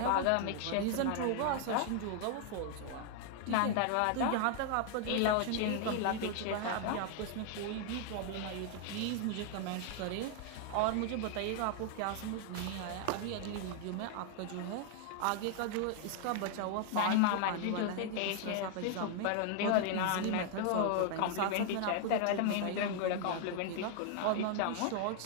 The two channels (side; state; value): both; different; correlation 0.00